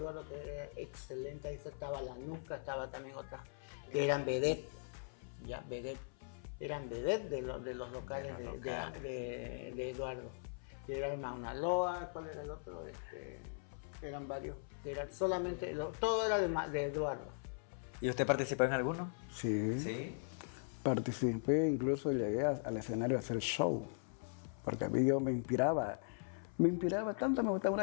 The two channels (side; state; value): right; silent; 51 dB below the other